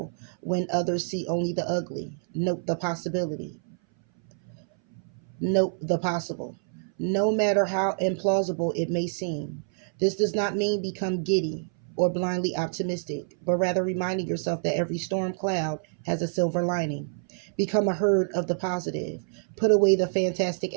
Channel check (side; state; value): left; silent; 59 dB below the other